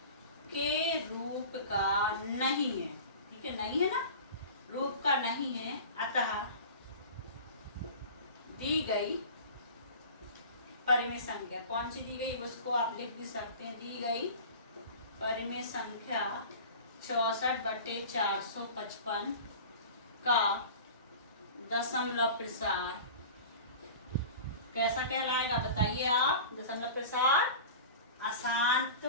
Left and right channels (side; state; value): both; inverted; correlation -0.37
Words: के रूप का नहीं है। ठीक है, नहीं है ना, रूप का नहीं है। अतः दी गई परिमेय संख्या कौन सी दी गई, उसको आप लिख भी सकते हैं। दी गई परिमेय संख्या 64 बटे 455 का दशमलव प्रसार कैसा कहलाएगा? बताइए आप। दशमलव प्रसार अशांत